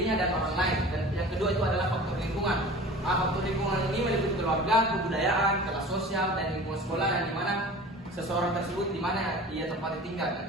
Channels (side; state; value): both; normal; correlation 0.40